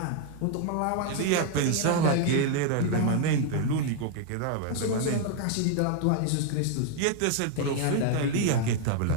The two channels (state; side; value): different; both; correlation 0.00